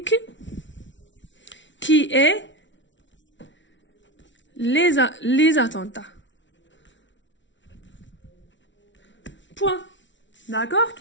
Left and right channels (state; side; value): late; right; 0.55 ms